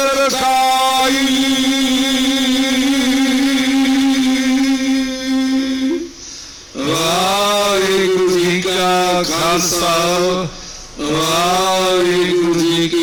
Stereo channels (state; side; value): identical; both; correlation 1.00